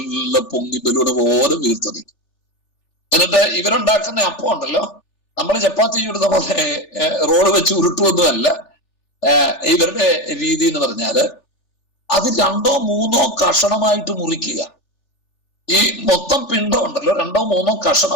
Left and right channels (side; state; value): right; late; 3.4 ms